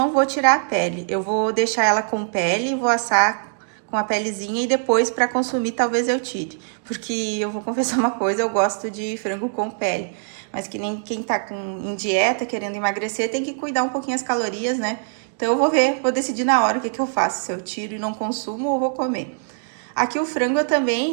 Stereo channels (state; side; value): silent; left; digital silence